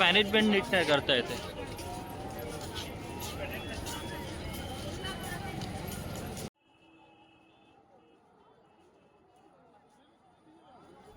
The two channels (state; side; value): identical; both; correlation 1.00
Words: नीट नाही करता येते.